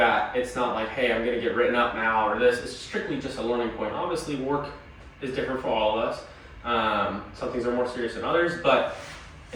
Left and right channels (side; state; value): both; identical; correlation 1.00